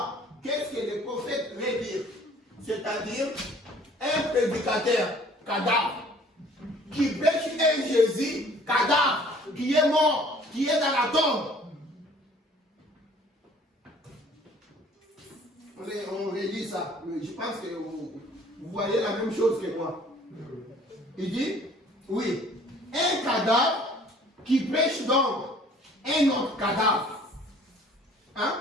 Qu'est-ce que le prophète veut dire? C'est-à-dire un prédicateur cadavre qui prêche un Jésus cadavre qui est mort, qui est dans la tombe. On relit ça. Je pense que vous voyez la même chose que moi. Il dit, oui, un cadavre qui prêche donc un autre cadavre. Hein?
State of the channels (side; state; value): both; normal; correlation 0.54